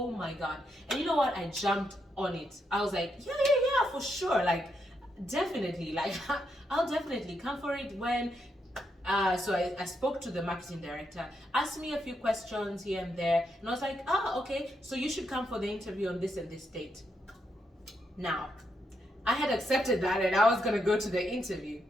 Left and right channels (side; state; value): both; normal; correlation 0.81